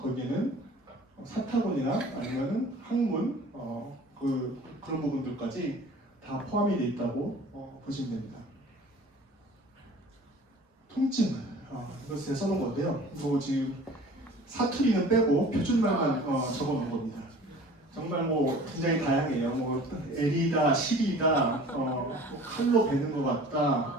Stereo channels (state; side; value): normal; both; correlation 0.45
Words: 사타구니나 아니면은 항문 그런 부분들까지 다 포함이 되어 있다고 보시면 됩니다. 통증, 이거 제가 써놓은 건데요. 이거 지금 사투리는 빼고 표준말만 적어놓은 겁니다. 정말 뭐 굉장히 다양해요. 뭐 L이다, 실이다, 칼로 베는 것